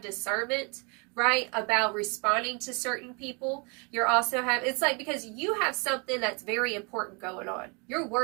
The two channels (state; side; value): quieter; left; 32.8 dB